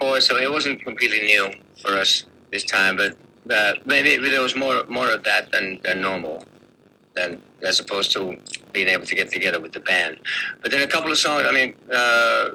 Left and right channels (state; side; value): identical; both; correlation 1.00